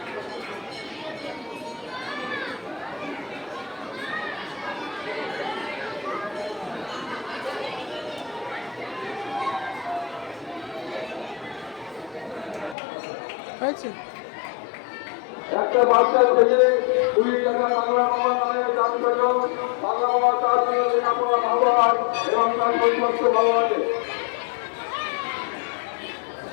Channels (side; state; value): right; drops out; at 12.8 s